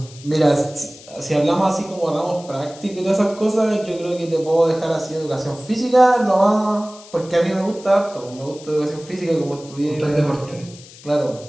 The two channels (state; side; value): noise; left; hiss, 20 dB below the sound